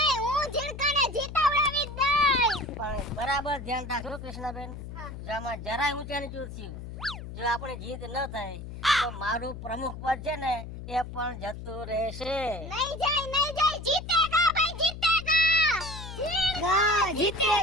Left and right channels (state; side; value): noise; left; hum, 10 dB below the sound